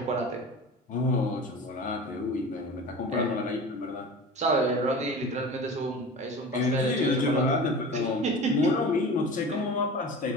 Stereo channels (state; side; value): normal; both; correlation 0.35